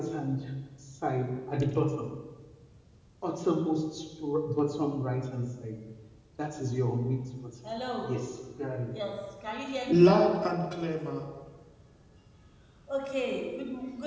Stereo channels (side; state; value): both; identical; correlation 1.00